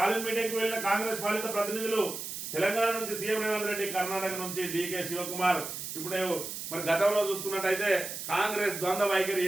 మీటింగ్ కు వెళ్లిన కాంగ్రెస్ పాలిత ప్రతినిధులు. తెలంగాణ నుంచి సీఎం రేవంత్ రెడ్డి, కర్ణాటక నుంచి డీకే శివకుమార్. ఇప్పుడు మరి గతంలో చూసుకున్నట్టయితే కాంగ్రెస్ ద్వంద్వ వైఖరి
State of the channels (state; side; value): noise; right; hiss, 7 dB below the sound